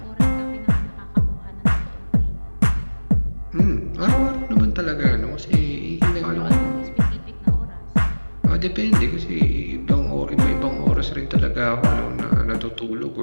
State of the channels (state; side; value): inverted; both; correlation -1.00